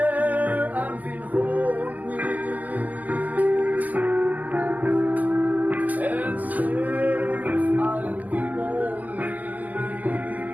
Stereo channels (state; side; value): late; left; 0.080 ms